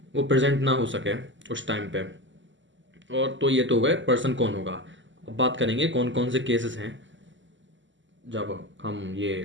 वो प्रेजेंट ना हो सके उस टाइम पे। और तो ये तो हो गए पर्सन कौन होगा। अब बात करेंगे कौन कौन से केसेस हैं जब हम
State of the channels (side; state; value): left; late; 0.54 ms